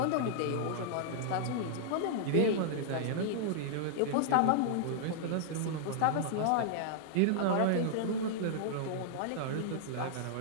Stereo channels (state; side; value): different; both; correlation -0.01